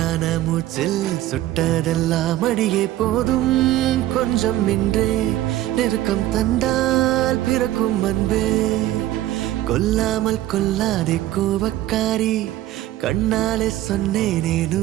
மூச்சில் சுட்டதெல்லாம் அடியே போதும். கொஞ்சம் இன்றே நெருக்கம் தந்தால் பிறக்கும் அன்பே. கொல்லாமல் கொல்லாதே கோபக்காரி, கண்ணாலே சொன்னேனே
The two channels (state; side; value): quieter; left; 14.4 dB